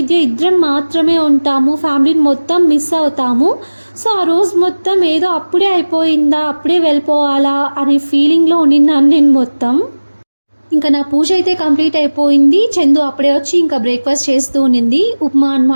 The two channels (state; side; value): inverted; both; correlation -1.00